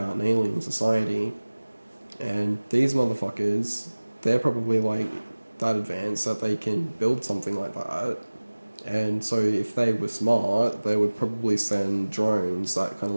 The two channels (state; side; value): inverted; both; correlation -1.00